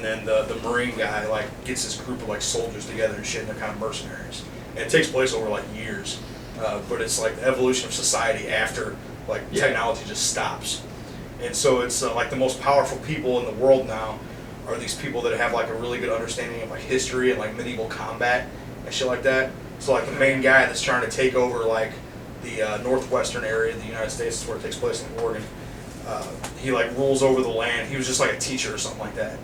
then the Marine guy like gets this group of like soldiers together and shit. And they're kind of mercenaries. And it takes place over like years. But it's like the evolution of society after like technology just stops. And so it's like the most powerful people in the world now are these people that have like a really good understanding of like history and like medieval combat and shit like that. So like the main guy that's trying to take over like the northwestern area of the United States, is where it takes place in Oregon. He like rules over the land. He was just like a teacher or something like that,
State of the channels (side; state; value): both; identical; correlation 1.00